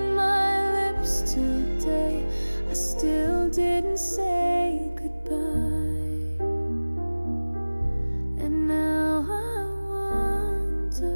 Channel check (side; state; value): both; inverted; correlation -1.00